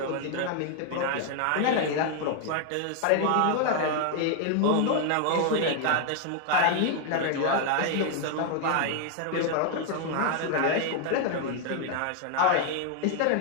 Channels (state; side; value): different; both; correlation 0.00